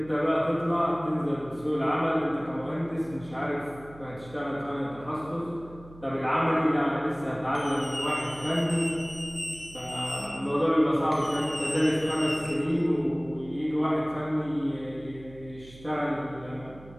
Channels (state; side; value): noise; right; hum, 20 dB below the sound